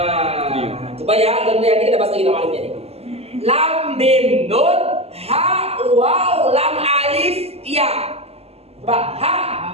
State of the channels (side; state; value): left; late; 0.29 ms